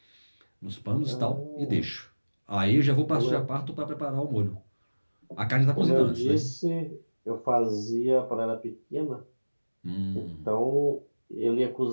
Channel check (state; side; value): inverted; both; correlation -1.00